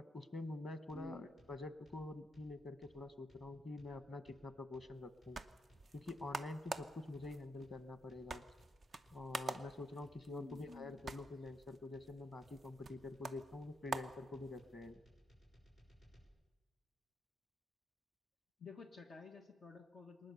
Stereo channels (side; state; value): both; normal; correlation 0.80